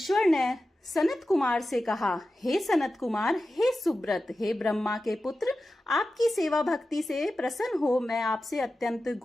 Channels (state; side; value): normal; both; correlation 0.93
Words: ने सनत कुमार से कहा, हे सनत कुमार, हे सुब्रत, हे ब्रह्मा के पुत्र, आपकी सेवा भक्ति से प्रसन्न हो मैं आपसे अत्यंत